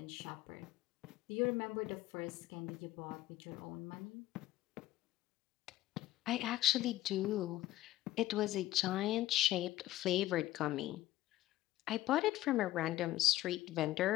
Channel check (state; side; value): quieter; right; 15.1 dB